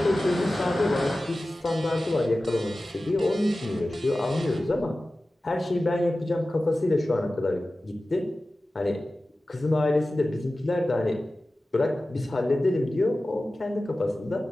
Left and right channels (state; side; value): normal; both; correlation 0.96